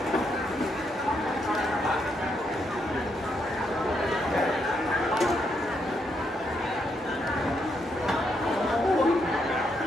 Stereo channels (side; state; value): both; normal; correlation 0.78